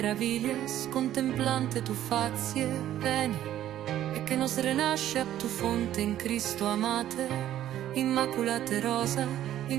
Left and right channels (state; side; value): quieter; left; 12.3 dB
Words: contemplante tu fazie, veni, e che nos renasce a tu fonte in Cristo amate, immaculate rosa,